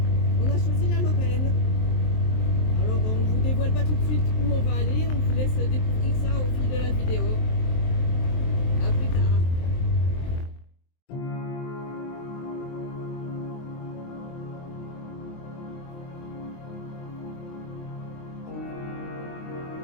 on a choisi la Lorraine. Alors on ne vous dévoile pas tout de suite où on va aller, on vous laisse découvrir ça au fil de la vidéo. A plus tard.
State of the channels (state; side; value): late; right; 23 ms